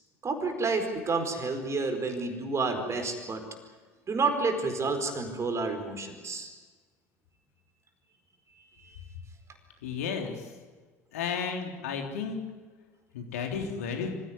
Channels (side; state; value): both; normal; correlation 0.43